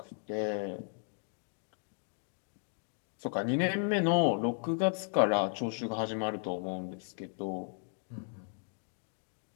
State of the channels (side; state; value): right; silent; 54 dB below the other